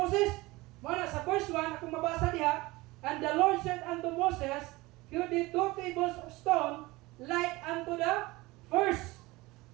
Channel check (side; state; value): left; quieter; 21.2 dB